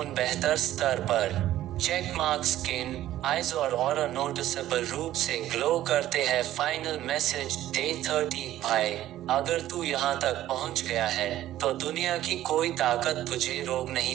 बेहतर स्तर पर, चेक मार्क स्किन, आईज और aura noticeable रूप से glow करते हैं। फाइनल मैसेज, डे 30, भाई अगर तू यहाँ तक पहुँच गया है तो दुनिया की कोई ताकत तुझे रोक नहीं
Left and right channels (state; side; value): quieter; left; 13.6 dB